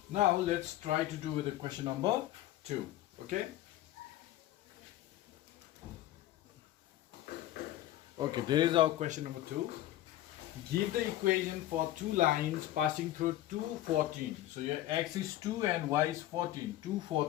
Now let's try to do with the question number 2. Okay. Okay, there is our question number 2. Give the equation for two lines passing through 214. So your x is 2 and y is 14.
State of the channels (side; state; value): right; quieter; 14.3 dB